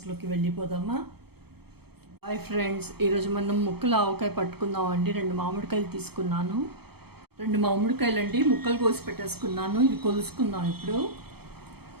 వెళ్ళిపోదామా. హాయ్ ఫ్రెండ్స్, ఈరోజు మనం ముక్కలు ఆవకాయ పట్టుకుందామండి. 2 మామిడికాయలు తీసుకున్నాను. 2 మామిడికాయలు అండి ముక్కలు కోసి పెట్టేసుకున్నాను. ఇవి కొలుసుకుందాం ఇప్పుడు.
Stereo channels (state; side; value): late; left; 0.96 ms